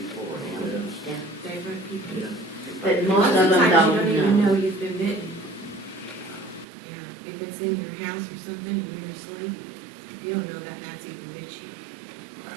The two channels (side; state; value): left; drops out; at 6.7 s